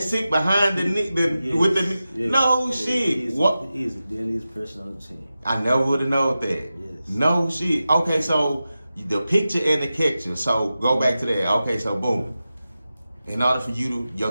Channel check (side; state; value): both; inverted; correlation -0.93